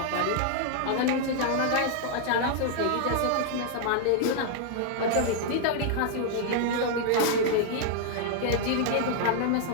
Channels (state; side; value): different; both; correlation -0.01